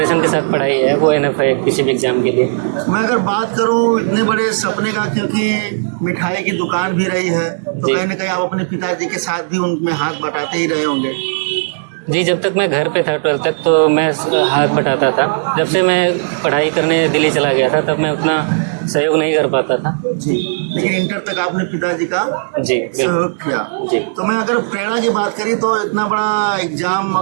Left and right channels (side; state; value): left; silent; digital silence